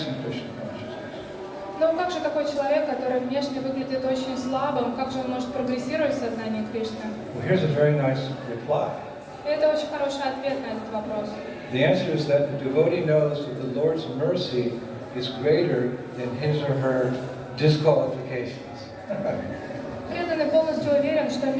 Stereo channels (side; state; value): both; identical; correlation 1.00